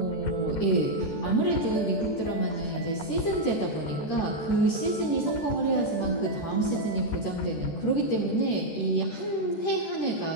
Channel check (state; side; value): late; right; 14 ms